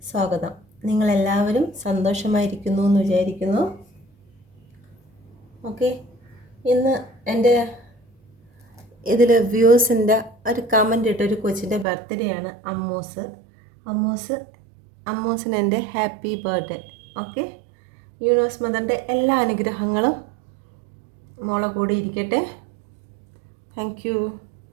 സ്വാഗതം. നിങ്ങളെല്ലാവരും സന്തോഷമായിരിക്കുന്നു എന്ന് വിചാരിക്കുന്നു. ഓക്കെ, ഇന്ന് എൻ്റെ ഇതിൽ വ്യൂസിൻ്റെ ഒരു കമൻ്റ് ഇട്ട ഒരു കൊച്ചിൻ്റെ ബർത്ത്ഡേ ആണ്. അമ്മൂസിന് എൻ്റെ ഹാപ്പി ബർത്ത്ഡേ. ഓക്കെ, യൂണിവേഴ്സ് മദറിൻ്റെ എല്ലാ അനുഗ്രഹങ്ങളും മോളെ കൂടി ഇരിക്കട്ടെ. Thank you.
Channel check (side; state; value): left; drops out; at 11.9 s